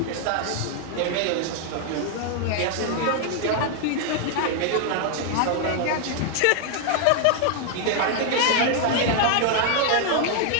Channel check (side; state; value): both; different; correlation 0.00